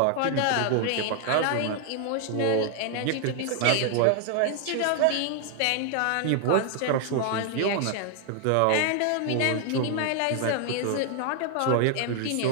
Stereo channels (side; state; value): both; different; correlation 0.00